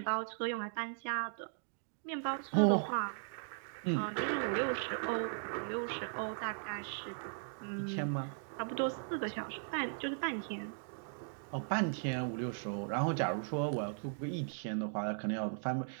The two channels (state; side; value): silent; left; digital silence